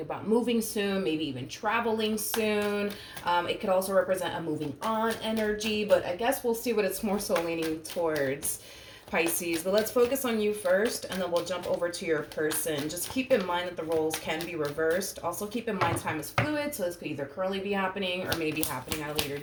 about moving soon, maybe even traveling soon. It could also represent a moving on energy, but I guess we'll see what it's more so leaning towards, Pisces. But let's focus on you first, and then we'll jump over to your person. Just keep in mind that the roles can be reversed. Also keep in mind time is fluid, so this could either currently be happening or maybe happening at a later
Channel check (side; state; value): both; identical; correlation 1.00